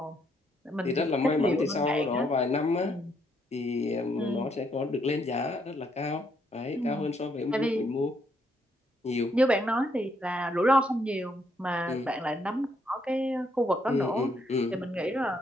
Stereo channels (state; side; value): normal; both; correlation 0.73